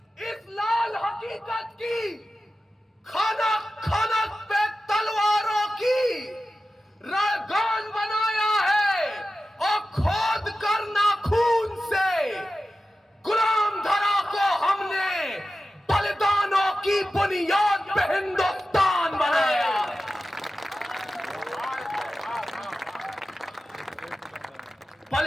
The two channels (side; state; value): both; normal; correlation 0.94